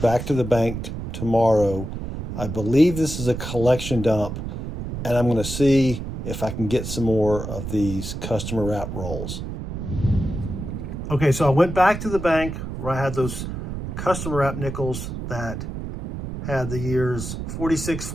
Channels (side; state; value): right; noise; rumble, 6 dB below the sound